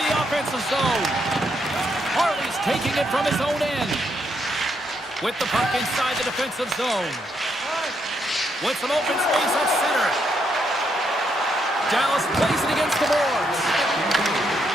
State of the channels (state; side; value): normal; both; correlation 0.77